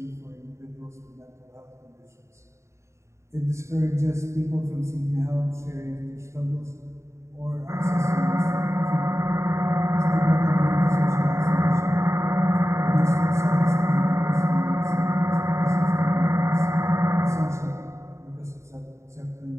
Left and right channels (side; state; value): left; late; 0.14 ms